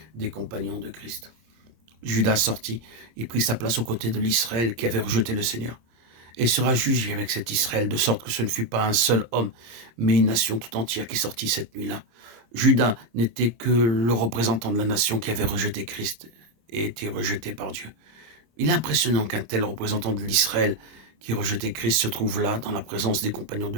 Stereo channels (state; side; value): late; left; 26 ms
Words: des compagnons de Christ. Judas sortit et prit sa place aux côtés de l'Israël qui avait rejeté le Seigneur, et sera jugé avec cet Israël, de sorte que ce ne fut pas un seul homme, mais une nation tout entière qui sortit cette nuit-là. Judas n'était que le représentant de la nation qui avait rejeté Christ et été rejeté par Dieu. Il est impressionnant qu'un tel représentant de l'Israël qui rejetait Christ se trouve là, dans la présence des compagnons